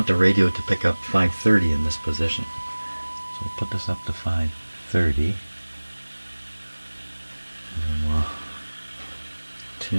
the radio to pick up 530 in this position. So we'll put this up to 530. And we'll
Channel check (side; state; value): both; inverted; correlation -1.00